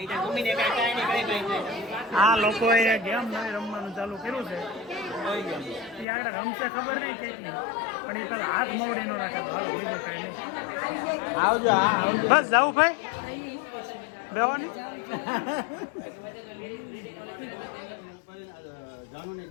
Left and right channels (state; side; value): drops out; right; at 6.1 s